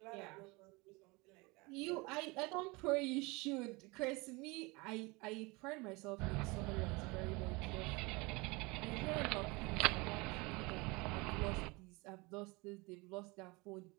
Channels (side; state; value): left; quieter; 25.5 dB